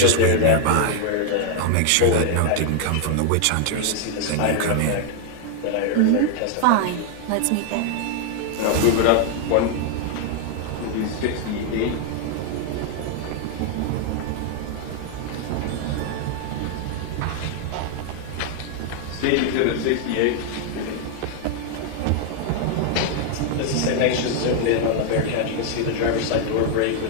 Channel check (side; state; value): both; different; correlation 0.00